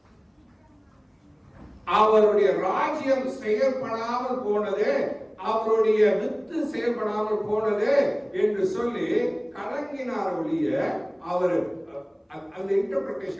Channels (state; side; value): identical; both; correlation 1.00